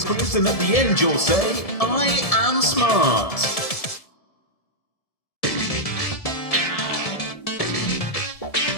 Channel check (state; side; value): late; right; 1.7 ms